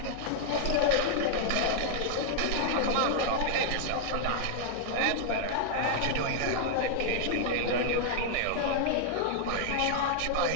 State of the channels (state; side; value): different; both; correlation -0.01